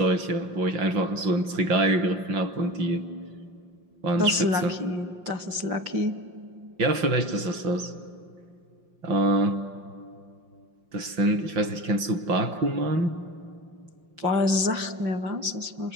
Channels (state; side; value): late; left; 5.7 ms